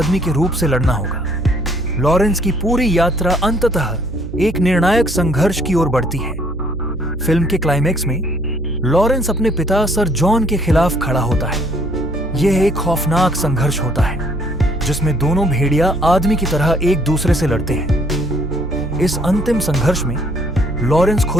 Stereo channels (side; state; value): right; noise; hum, 10 dB below the sound